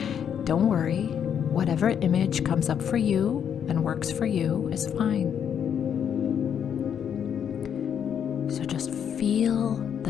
don't worry. Whatever image comes up for you and works for you is fine. So just feel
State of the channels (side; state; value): right; quieter; 8.4 dB